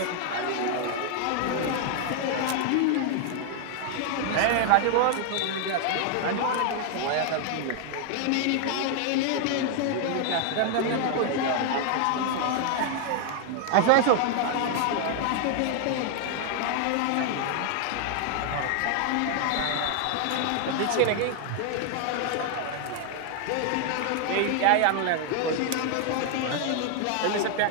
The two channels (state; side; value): different; both; correlation 0.00